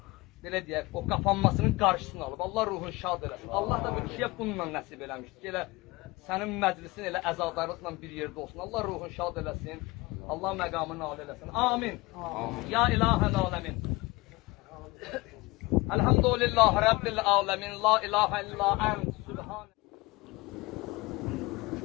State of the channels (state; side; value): quieter; right; 22.3 dB